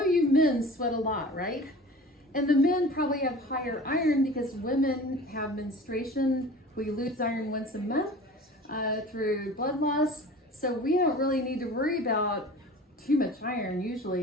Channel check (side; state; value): both; normal; correlation 0.41